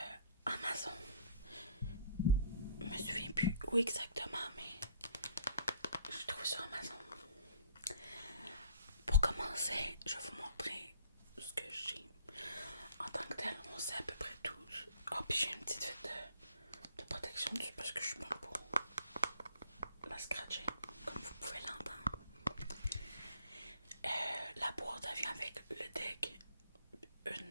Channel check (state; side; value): inverted; both; correlation -0.57